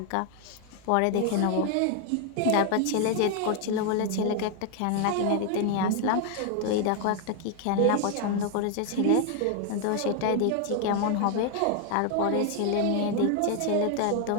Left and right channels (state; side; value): different; both; correlation 0.00